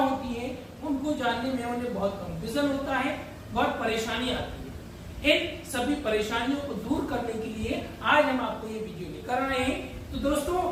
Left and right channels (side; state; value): both; identical; correlation 1.00